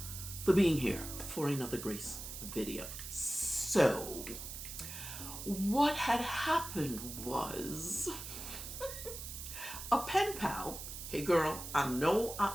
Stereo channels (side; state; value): right; noise; hiss, 9 dB below the sound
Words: for being here for another Grace video. So, what had happened was a pen pal. Hey girl, I know